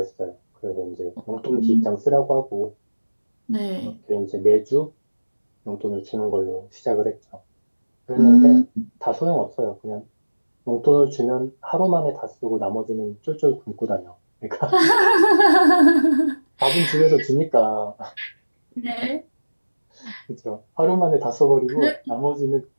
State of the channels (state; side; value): inverted; both; correlation -1.00